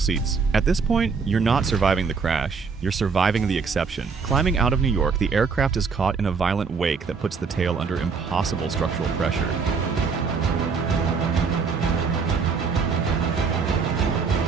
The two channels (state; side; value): quieter; left; 5.3 dB